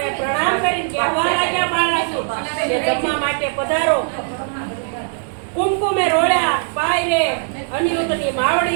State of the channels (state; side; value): silent; left; digital silence